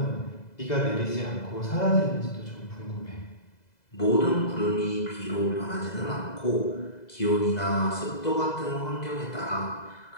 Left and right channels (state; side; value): late; right; 2.0 ms